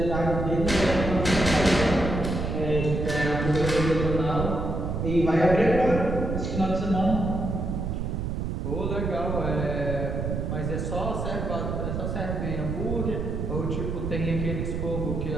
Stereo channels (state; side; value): noise; right; rumble, 2 dB below the sound